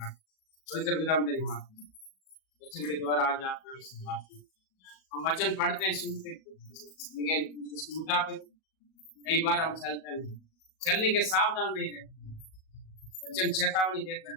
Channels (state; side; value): late; right; 37 ms